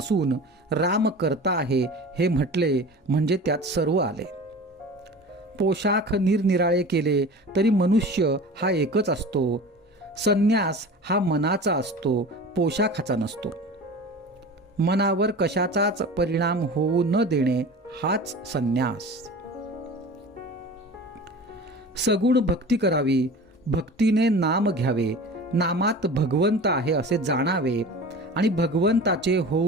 राम करता आहे हे म्हटले म्हणजे त्यात सर्व आले. पोशाख निरनिराळे केले तरी मनुष्य हा एकच असतो. संन्यास हा मनाचा असतो, पोशाखाचा नसतो. मनावर कशाचाच परिणाम होऊ न देणे हाच संन्यास. सगुण भक्ती करावी, भक्तीने नाम घ्यावे, नामात भगवंत आहे असे जाणावे आणि भगवंताचे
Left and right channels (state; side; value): normal; both; correlation 0.37